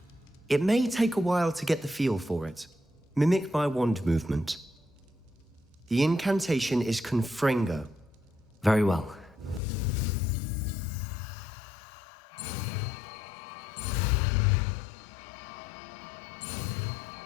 It may take a while to get the feel for it. Mimic my wand movement. The incantation is Confringo. Very well.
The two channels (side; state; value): right; drops out; at 9.6 s